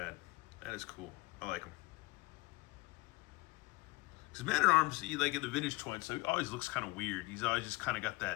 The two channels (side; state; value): right; quieter; 23.6 dB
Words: That is cool. I like him. Because Man-at-Arms, like in the vintage toys, so he always looks kind of weird. He's always just kind of got